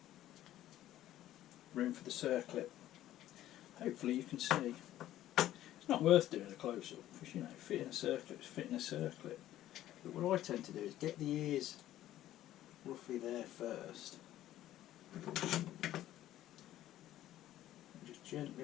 room for the circlip. Hopefully you can see. It's not worth doing a close-up, because you know, fitting a circlip is fitting a circlip. But what I tend to do is get the ears roughly there first, and just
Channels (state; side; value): quieter; right; 13.5 dB